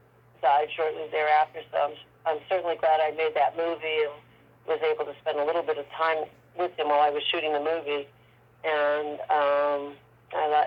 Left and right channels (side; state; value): both; identical; correlation 1.00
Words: died shortly thereafter, so I'm certainly glad I made that movie and was able to spend a little bit of time with him while I was shooting the movie. And